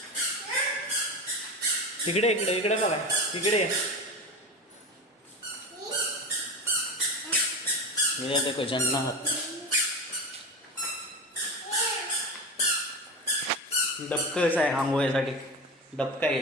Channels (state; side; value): normal; both; correlation 0.25